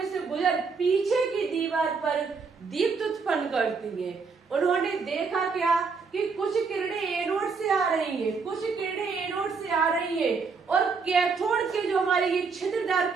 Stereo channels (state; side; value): quieter; left; 5.0 dB